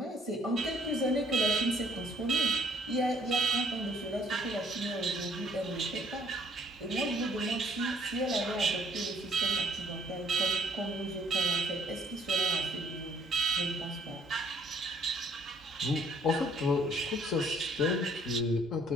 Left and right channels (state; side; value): normal; both; correlation 0.61